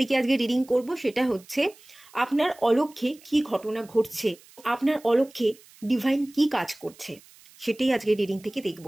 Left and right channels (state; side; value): noise; right; hiss, 25 dB below the sound